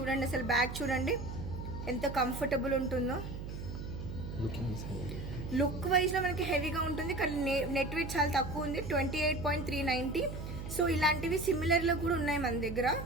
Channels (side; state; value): right; noise; hum, 7 dB below the sound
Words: అసలు బ్యాగ్ చూడండి ఎంత కంఫర్టబుల్ ఉంటుందో. లుక్ వైజ్లో మనకి హెవీగా ఉంటుంది కానీ నెట్ వెయిట్ చాలా తక్కువ ఉంది, 28.390. సో ఇలాంటివి సిమిలర్లో కూడా ఉన్నాయి మన దగ్గర,